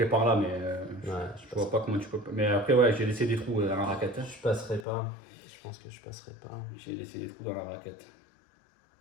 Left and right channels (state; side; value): drops out; right; at 4.9 s